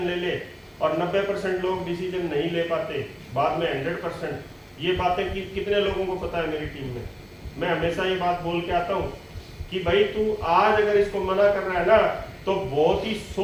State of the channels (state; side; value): identical; both; correlation 1.00